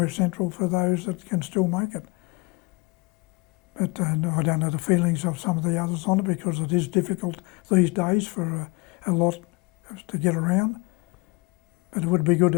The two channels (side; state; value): right; quieter; 27.2 dB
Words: central for those that can still make it. But I don't know the feelings of some of the others on it, because it is difficult these days for a lot to get around. But it would be good